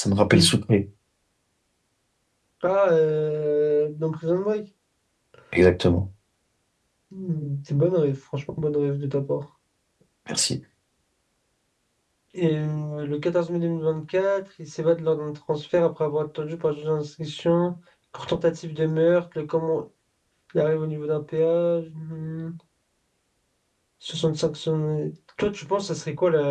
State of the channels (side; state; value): both; identical; correlation 1.00